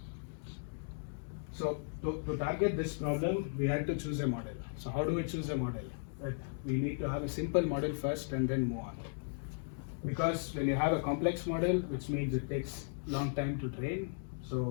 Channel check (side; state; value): right; silent; digital silence